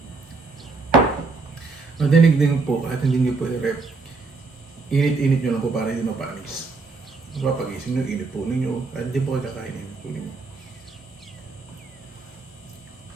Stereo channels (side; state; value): left; quieter; 4.1 dB